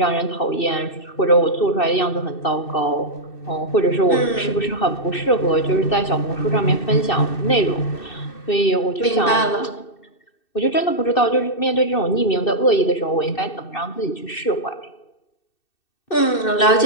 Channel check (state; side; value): late; right; 2.6 ms